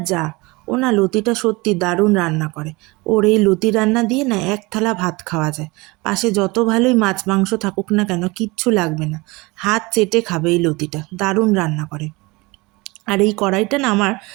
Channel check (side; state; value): left; quieter; 23.7 dB